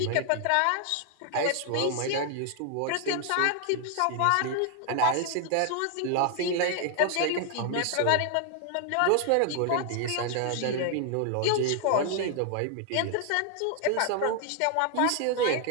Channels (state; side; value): different; both; correlation 0.00